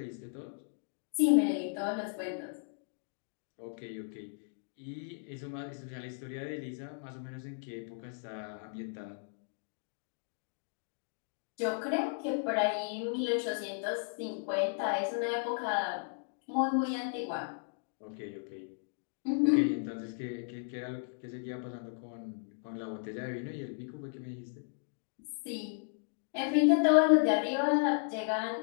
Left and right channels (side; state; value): right; silent; digital silence